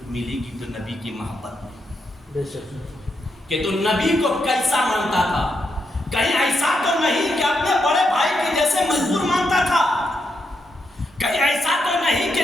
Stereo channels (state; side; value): normal; both; correlation 0.81